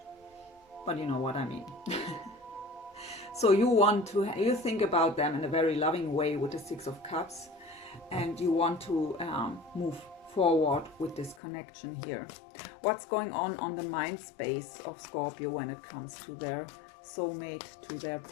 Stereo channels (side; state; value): right; drops out; at 11.4 s